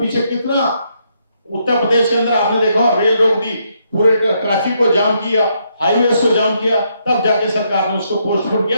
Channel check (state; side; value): inverted; both; correlation -0.76